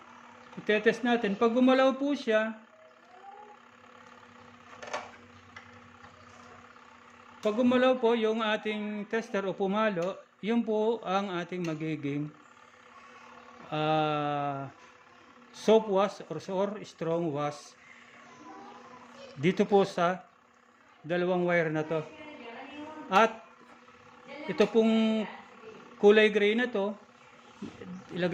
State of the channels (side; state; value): both; identical; correlation 1.00